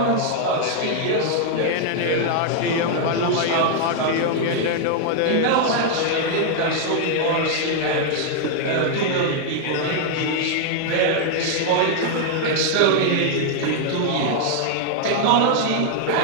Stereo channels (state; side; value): different; both; correlation 0.00